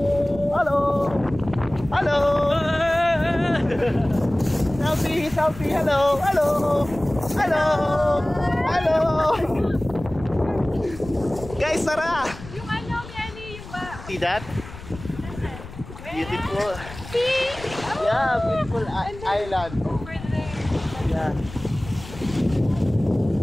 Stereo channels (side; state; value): left; noise; rumble, 15 dB below the sound